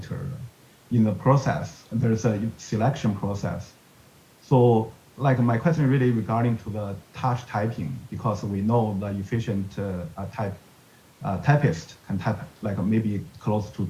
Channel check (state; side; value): identical; both; correlation 1.00